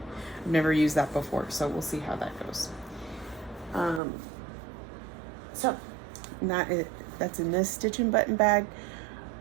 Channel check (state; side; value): drops out; left; at 4.0 s